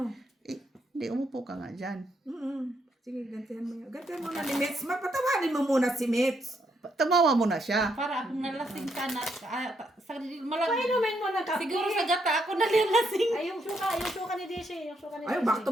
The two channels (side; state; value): both; normal; correlation 0.76